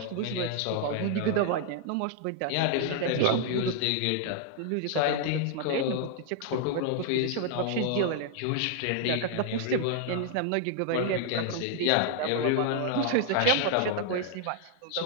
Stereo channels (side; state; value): both; different; correlation 0.00